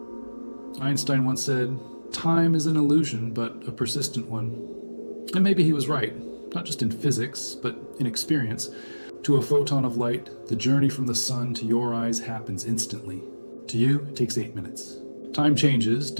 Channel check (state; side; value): inverted; both; correlation -1.00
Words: Einstein once said, "Time is an illusion, but a persistent one." And maybe he was right, not just in physics, but in experience. To a photon of light, the journey from the sun to your eyes happens instantly. To you, it takes 8 minutes. Time changes